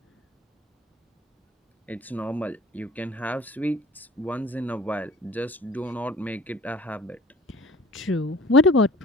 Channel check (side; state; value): both; normal; correlation 0.48